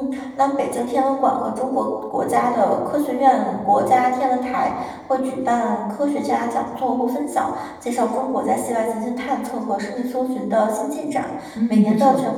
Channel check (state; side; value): identical; both; correlation 1.00